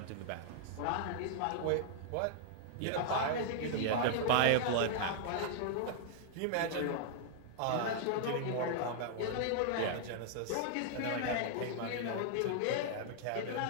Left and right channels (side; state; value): both; different; correlation -0.01